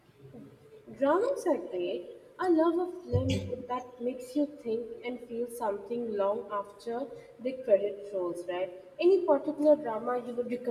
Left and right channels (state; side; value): identical; both; correlation 1.00